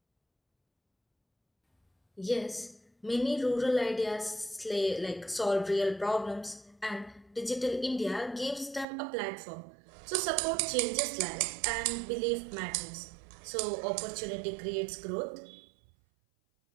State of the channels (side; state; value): left; drops out; at 8.8 s